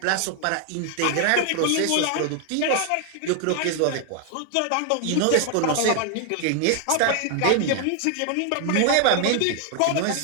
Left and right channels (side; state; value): both; different; correlation 0.00